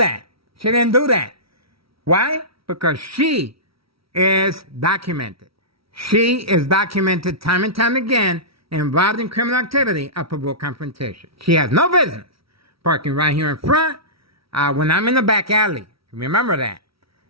Why? Because she is documented. She is documented time and time again involved in criminal activity of provoked confrontation. She has no business parking right here in front when I'm in the back alley. Remember that.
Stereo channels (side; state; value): left; late; 0.75 ms